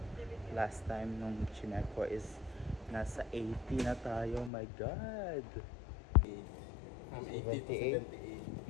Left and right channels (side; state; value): right; drops out; at 4.5 s